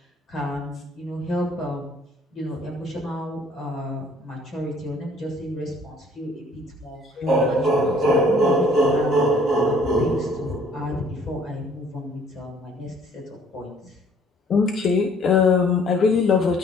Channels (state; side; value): normal; both; correlation 0.58